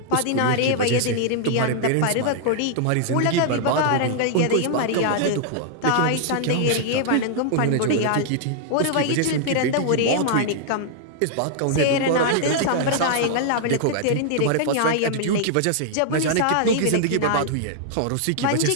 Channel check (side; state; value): both; different; correlation -0.01